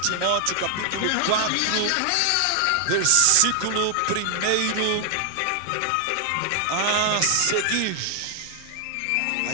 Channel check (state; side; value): different; both; correlation 0.00